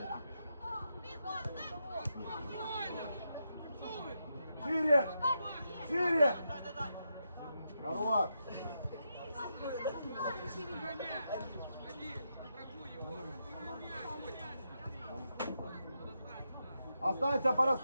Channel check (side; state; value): both; inverted; correlation -0.84